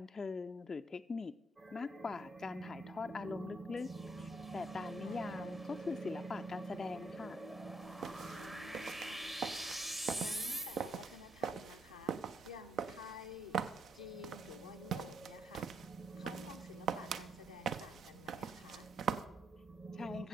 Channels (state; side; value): normal; both; correlation 0.74